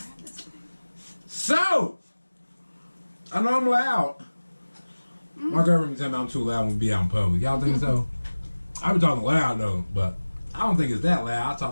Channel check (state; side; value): inverted; both; correlation -1.00